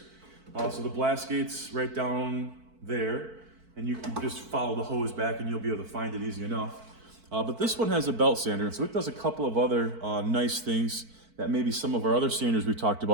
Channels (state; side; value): late; left; 4.5 ms